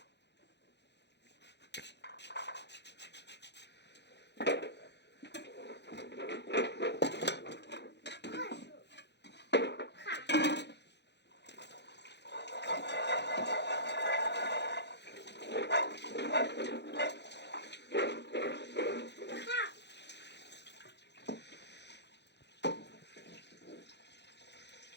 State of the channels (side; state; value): right; late; 0.50 ms